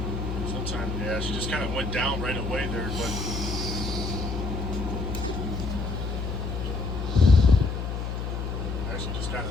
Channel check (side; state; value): left; noise; hum, 3 dB below the sound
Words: Sometimes, yeah, she just kind of went down right away there, but actually just kind